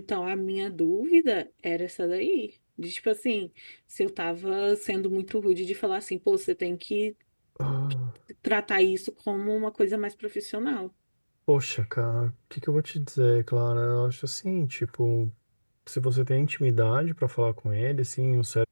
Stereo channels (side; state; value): both; inverted; correlation -1.00